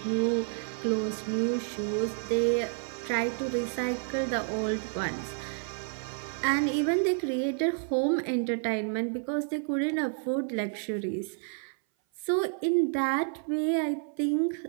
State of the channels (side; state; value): left; silent; 56 dB below the other